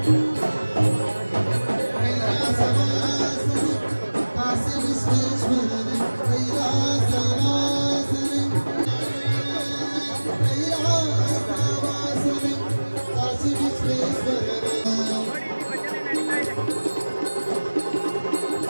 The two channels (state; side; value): inverted; both; correlation -1.00